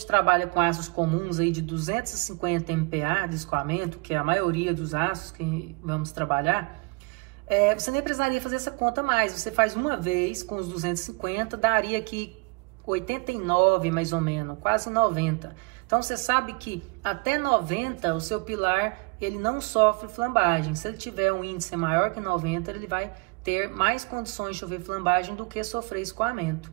trabalha com aços comuns aí de 250 MPa de escoamento, que é a maioria dos aços que vamos trabalhar, você nem precisaria fazer essa conta mais. Você faz uma vez com os 250, daria aqui 89 mais ou menos, quase 90. Então você sabe que até 90 o seu pilar ele não sofre flambagem. Se ele tiver um índice maior que 90, ele vai ter mais condições de sofrer flambagem do que sofrer escoamento.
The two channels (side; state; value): left; quieter; 30.3 dB